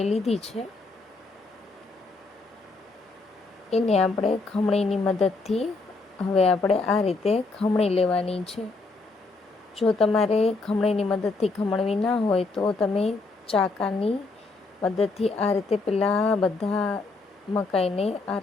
લીધી છે. એને આપણે ખમણીની મદદથી હવે આપણે આ રીતે ખમણી લેવાની છે. જો તમારે ખમણીની મદદથી ખમણવી ના હોય તો તમે ચાકાની મદદથી આ રીતે પહેલાં બધા મકાઈને આ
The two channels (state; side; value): quieter; right; 3.6 dB